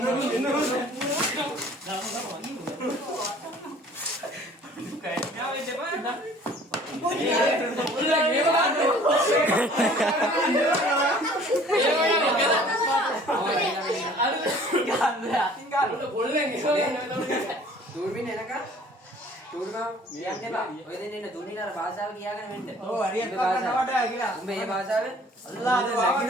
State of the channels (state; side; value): normal; both; correlation 0.52